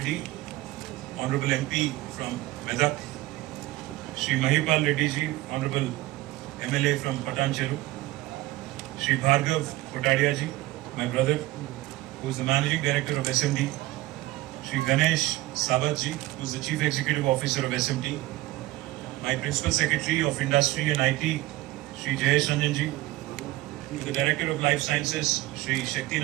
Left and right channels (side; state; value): left; quieter; 17.9 dB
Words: honourable MP from Medak, Shri Mahipal Reddy ji honourable MLA from Patancheru, Shri Bhargav Kotadia ji, my brother, who is the managing director of SMT, Shri Ganesh Sabat ji, who is the chief executive officer of SMT, my principal secretary of industry and IT, Shri Jayesh Ranjan ji, to the director of life sciences, Shri